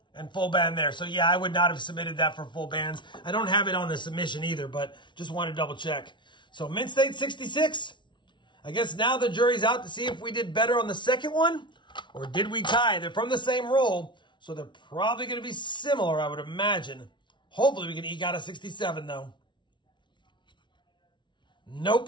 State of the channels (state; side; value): late; right; 0.23 ms